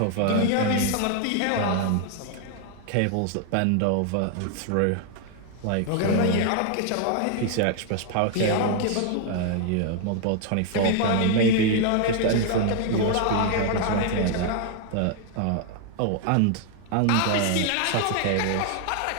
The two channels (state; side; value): different; both; correlation 0.00